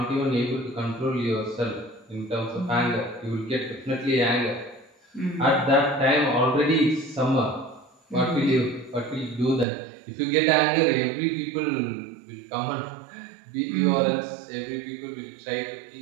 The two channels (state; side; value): drops out; left; at 9.7 s